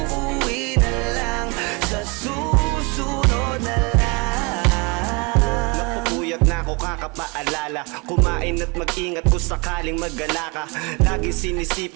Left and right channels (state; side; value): quieter; left; 29.3 dB